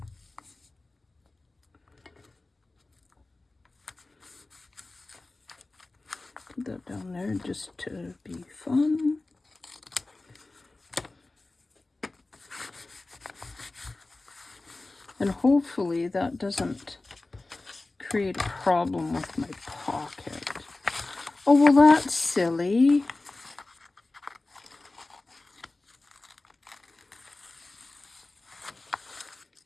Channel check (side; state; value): right; quieter; 3.1 dB